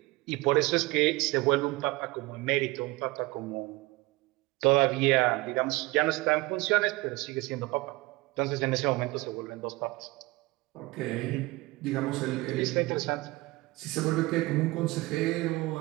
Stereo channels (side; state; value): left; quieter; 21.7 dB